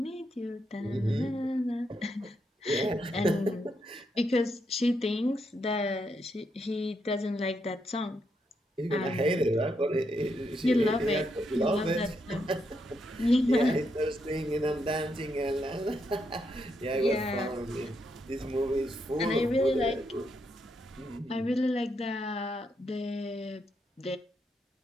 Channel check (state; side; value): normal; both; correlation 0.80